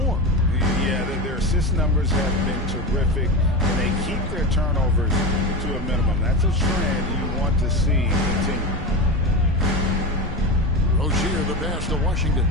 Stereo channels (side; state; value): both; normal; correlation 0.23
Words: Yeah, their assist numbers have been terrific, and they keep their turnovers to a minimum. That's a trend you want to see continue. Rozier the pass to Washington.